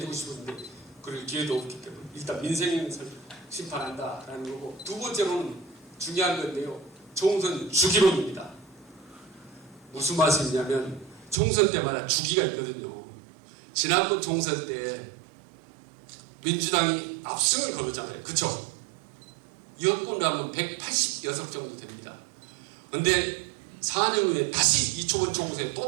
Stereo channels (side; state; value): left; drops out; at 11.4 s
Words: 싶은데 그럴 기회도 없기 때문에 일단 민생 심판한다라는 거고, 두 번째로는 중요한 건데요. 총선 주기론입니다. 무슨 말씀이냐면 총선 때마다 주기가 있거든요. 지난번 총선 때 민주당이 압승을 거뒀잖아요. 그쵸? 여권으로 하면 180석 정도 됩니다. 근데 4년 후에 다시 이초번 총선에